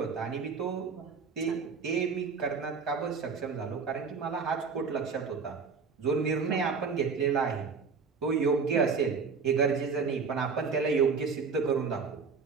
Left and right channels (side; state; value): left; quieter; 5.2 dB